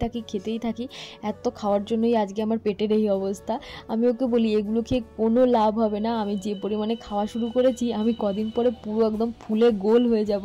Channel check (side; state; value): both; identical; correlation 1.00